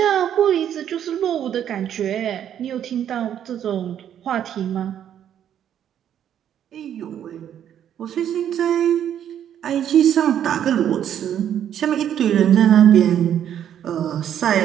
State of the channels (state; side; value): quieter; left; 9.9 dB